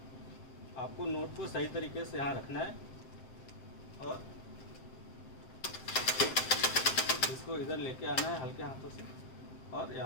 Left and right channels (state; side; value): late; right; 7.6 ms